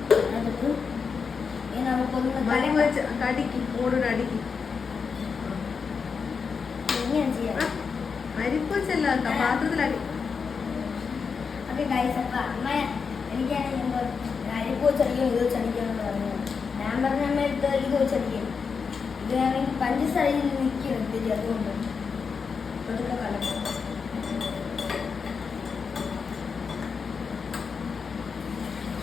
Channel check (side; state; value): right; quieter; 5.6 dB